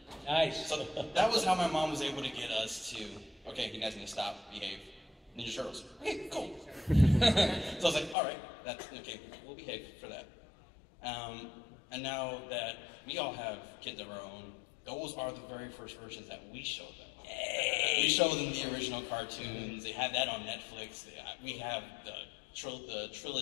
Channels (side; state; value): right; drops out; at 8.2 s